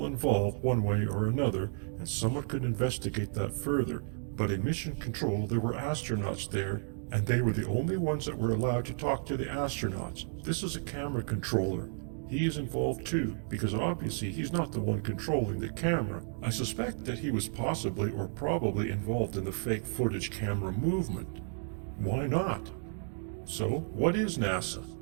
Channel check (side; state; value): left; silent; 56 dB below the other